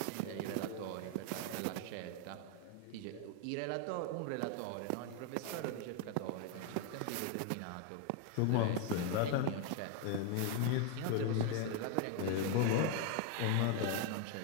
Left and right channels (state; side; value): different; both; correlation 0.01